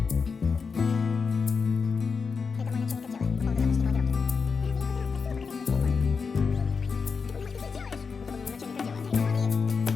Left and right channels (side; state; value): right; quieter; 5.3 dB